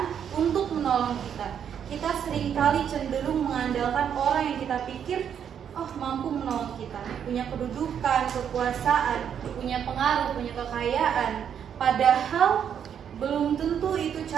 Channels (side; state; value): left; quieter; 8.4 dB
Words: untuk menolong kita. Kita seringkali cenderung mengandalkan orang yang kita pikir mampu menolong kita, punya kedudukan, kekuasaan, punya pengaruh, punya kekayaan. Padahal belum tentu itu